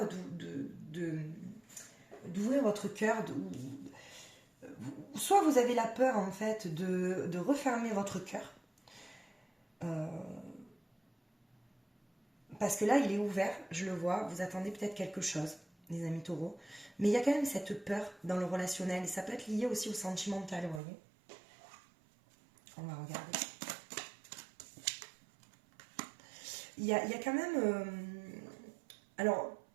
d'ouvrir votre cœur, soit vous avez la peur en fait de refermer votre cœur, parce que là il est ouvert, je le vois, vous attendez peut-être quelque chose, les amis taureaux, mais il y a quand même cette peur dans le relationnel, et ça peut être lié aussi au sentimental, vous voyez. On va regarder. Il y a quand même... alors,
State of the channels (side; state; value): left; drops out; at 20.8 s